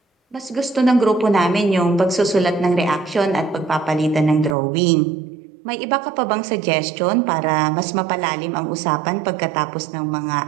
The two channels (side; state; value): left; drops out; at 4.5 s